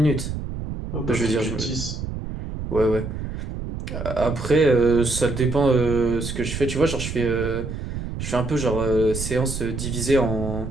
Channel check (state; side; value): noise; right; rumble, 6 dB below the sound